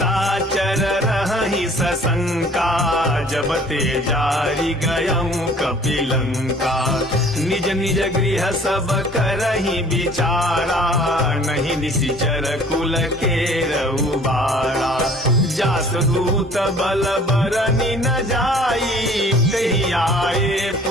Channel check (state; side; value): normal; both; correlation 0.53